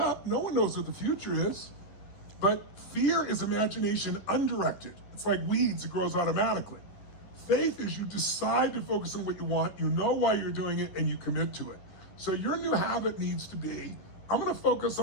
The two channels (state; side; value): late; right; 10 ms